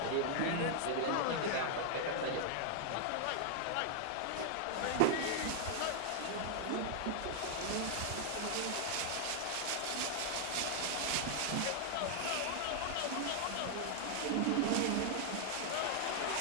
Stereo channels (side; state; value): both; different; correlation 0.00